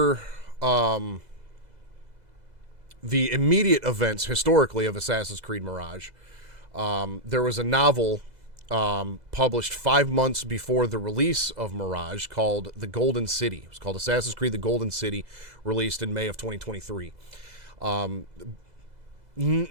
the immediate events historically of Assassin's Creed Mirage, there was a novel published 5 months before the release of Mirage called The Golden City. It was called Assassin's Creed The Golden City, released in May of 2023.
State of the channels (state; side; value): late; left; 2.0 ms